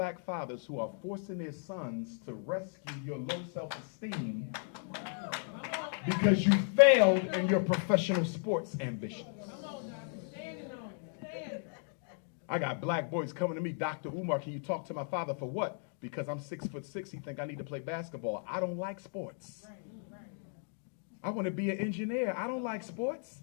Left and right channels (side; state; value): right; silent; 54 dB below the other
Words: fathers who are forcing their sons to rescue your low self-esteem because you failed in your professional sports ambitions. I got black boys coming to me, Dr. Umar, can you talk to my father for what? Because I'm 6'6", he think I need to play basketball. I don't like sports. I want to be an engineer. I don't like sports.